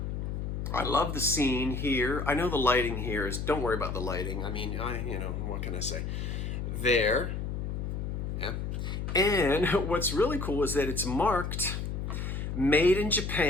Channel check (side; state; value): left; noise; hum, 3 dB below the sound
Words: I love the scene here. I know the lighting here is, don't worry about the lighting. I mean, what can I say? There. Yeah. And what's really cool is that it's marked made in